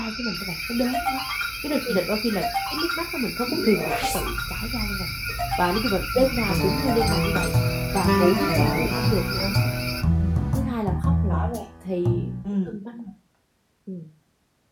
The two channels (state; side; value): identical; both; correlation 1.00